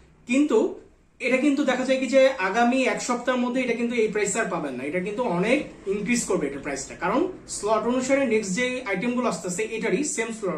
কিন্তু এটা কিন্তু দেখা যায় কি যে আগামী এক সপ্তাহের মধ্যে এটা কিন্তু এই প্রাইস আর পাবেন না, এটা কিন্তু অনেক ইনক্রিজ করবে এটা প্রাইসটা। কারণ স্লট অনুসারে নেক্সট যে আইটেম গুলো আসতেছে এটারই সেম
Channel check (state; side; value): identical; both; correlation 1.00